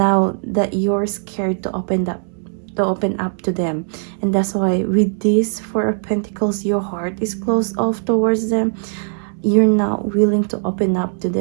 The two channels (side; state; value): left; silent; 65 dB below the other